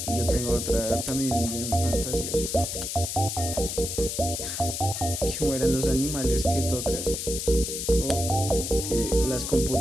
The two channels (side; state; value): left; noise; hiss, 4 dB below the sound